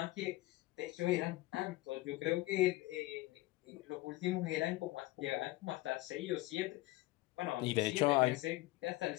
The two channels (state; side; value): quieter; right; 19.0 dB